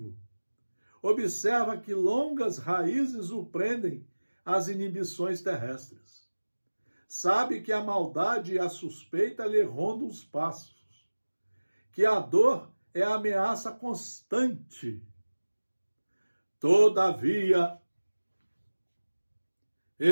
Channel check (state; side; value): inverted; both; correlation -1.00